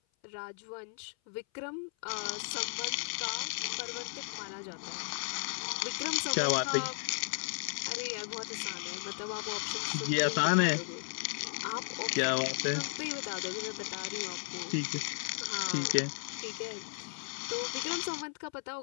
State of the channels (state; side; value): silent; right; 54 dB below the other